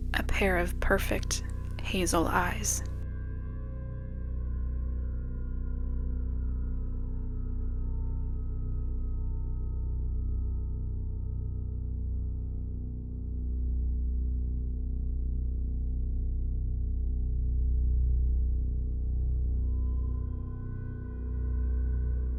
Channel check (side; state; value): both; identical; correlation 1.00